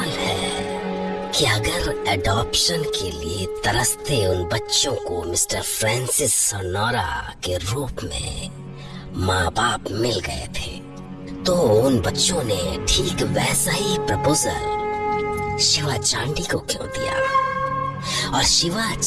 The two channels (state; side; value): identical; both; correlation 1.00